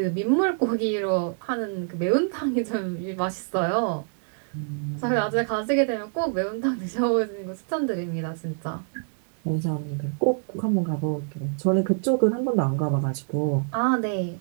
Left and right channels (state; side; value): silent; left; 61 dB below the other